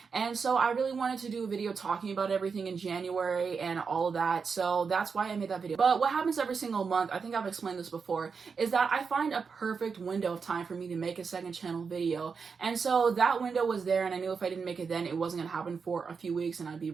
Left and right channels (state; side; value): quieter; left; 5.5 dB